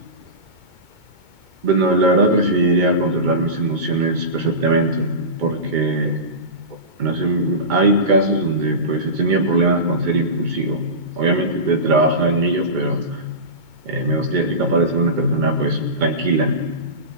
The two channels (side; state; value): left; late; 2.2 ms